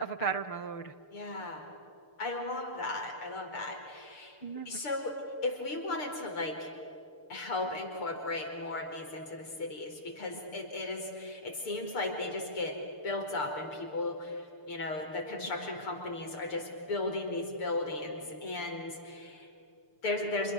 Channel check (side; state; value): right; late; 6.7 ms